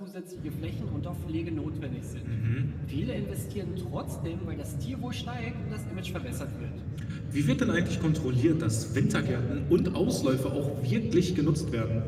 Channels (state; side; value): identical; both; correlation 1.00